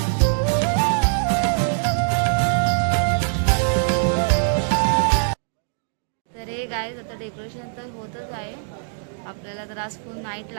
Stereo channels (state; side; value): silent; left; digital silence